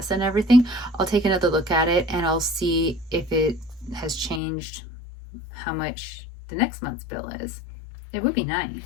and everything, I'll take another look at it and I'll see if it has changed, how much the next month's bill is. It would be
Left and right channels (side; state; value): right; drops out; at 4.4 s